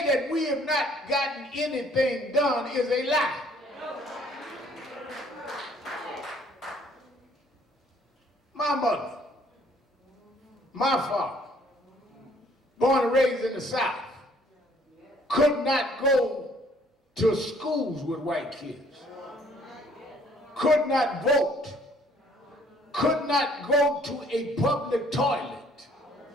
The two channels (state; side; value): normal; both; correlation 0.61